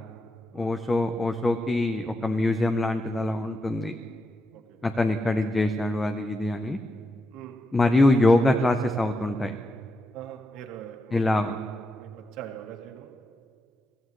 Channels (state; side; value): normal; both; correlation 0.86